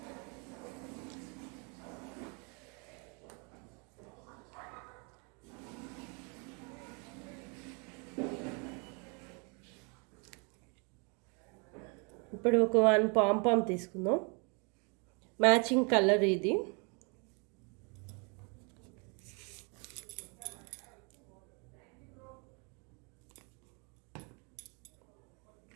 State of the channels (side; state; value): left; quieter; 34.2 dB